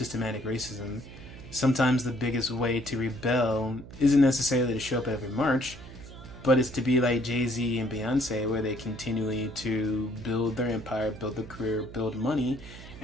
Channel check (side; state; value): right; noise; hum, 15 dB below the sound